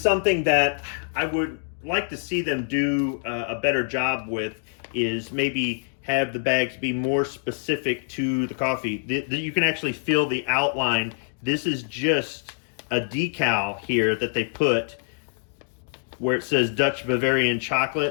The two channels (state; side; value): silent; right; digital silence